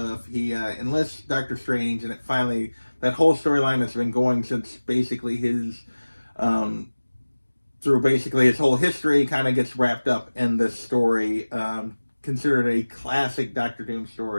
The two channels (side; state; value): both; inverted; correlation -1.00